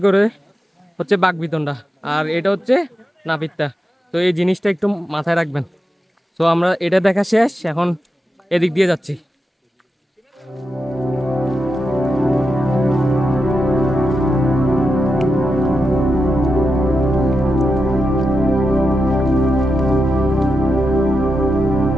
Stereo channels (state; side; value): normal; both; correlation 0.88